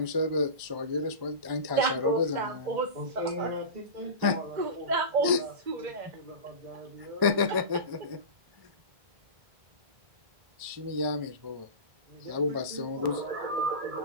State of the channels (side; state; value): left; late; 1.2 ms